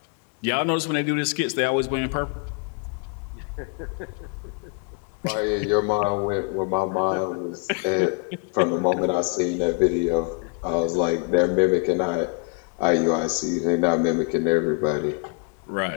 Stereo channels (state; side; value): quieter; right; 35.8 dB